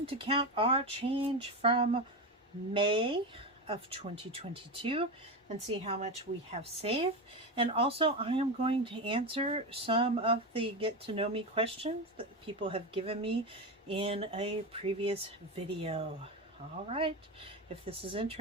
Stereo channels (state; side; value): normal; both; correlation 0.17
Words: to count our change from May of 2022 and see how much we have saved. And also I am going to answer some of the get to know me questions that people have given me in a previous video. All right, if this is